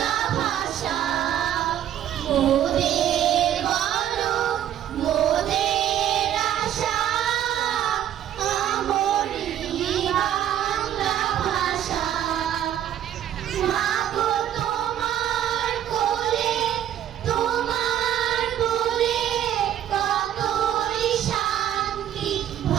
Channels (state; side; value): quieter; left; 10.9 dB